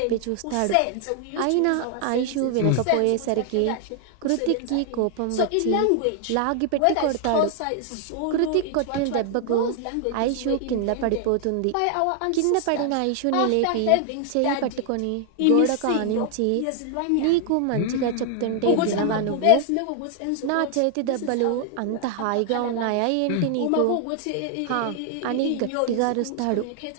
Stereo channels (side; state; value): both; different; correlation 0.00